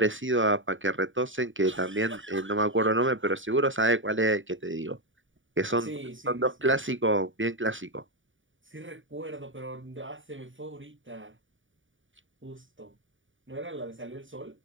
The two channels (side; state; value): left; late; 0.57 ms